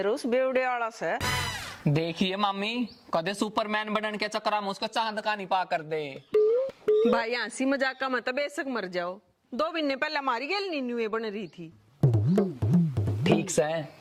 उस बेवड़े आला से। देखिए मामी, कदे सुपरमैन बनने के चक्कर में उसको चांद का नहीं पा कर दे। भाई हंसी मजाक का मतलब बेशक मर जाओ, 2 महीने पहले हमारी गेल नीनुए बन रही थी। ठीक से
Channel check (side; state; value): both; identical; correlation 1.00